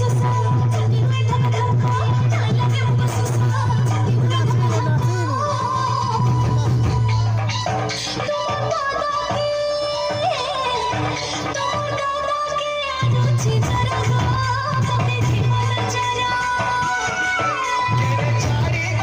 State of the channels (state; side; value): identical; both; correlation 1.00